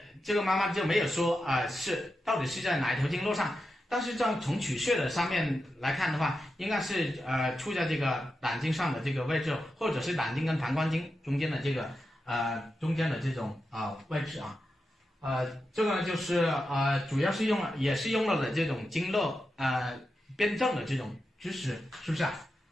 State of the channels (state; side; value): normal; both; correlation 0.89